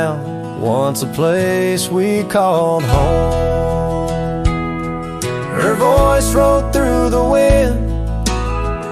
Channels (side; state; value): both; identical; correlation 1.00